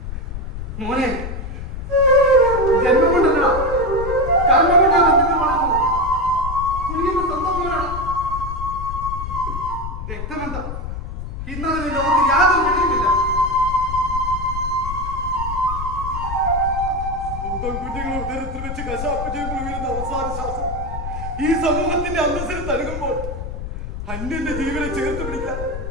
മോനെ, ജന്മം കൊണ്ടല്ല കർമ്മം കൊണ്ടാ ബന്ധങ്ങൾ വളർന്നു. നീ എന്റെ സ്വന്തം മോനാണ്. രക്തബന്ധം ഇന്നതിന് ലോകത്ത് യാതൊരു വെളിയുമില്ല. സ്വന്തം കുഞ്ഞുങ്ങളെ ഉദരത്തിൽ വെച്ച് കശാപ്പ് ചെയ്യുമ്പോൾ വീഴുന്ന അവസാന ശ്വാസം ഈ സമൂഹത്തിന്റെ അന്തസ്സിൽ തഴുകുമ്പോൾ അന്യന്റെ ജീവനെ ചേർത്ത് പിടിക്കാൻ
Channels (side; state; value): left; noise; rumble, 6 dB below the sound